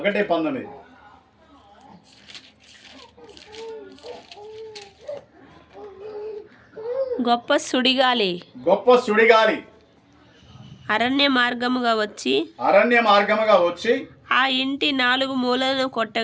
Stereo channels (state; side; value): identical; both; correlation 1.00